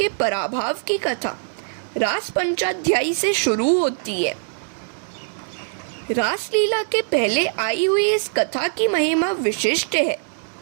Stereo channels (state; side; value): silent; left; digital silence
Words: पराभव की कथा रास पंचाध्यायी से शुरू होती है। रासलीला के पहले आई हुई इस कथा की महिमा विशिष्ट है।